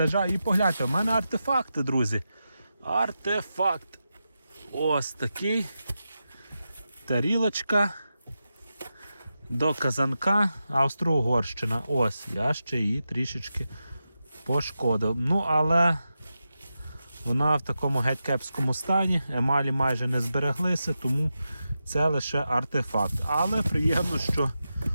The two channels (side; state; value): both; inverted; correlation -0.90